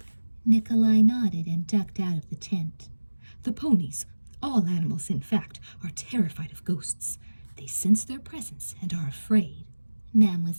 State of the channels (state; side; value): inverted; both; correlation -1.00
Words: Nikolai nodded and ducked out of the tent. The ponies, all animals in fact, are terrified of ghosts. They sense their presence and are afraid,